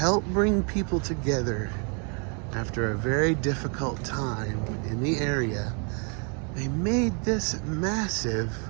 bring people together after a very difficult time in the area. They made this massive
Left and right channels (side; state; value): left; quieter; 37.9 dB